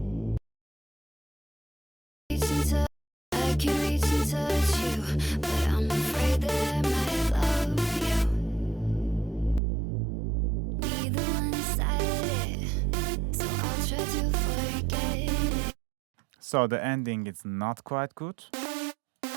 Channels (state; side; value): drops out; left; at 9.6 s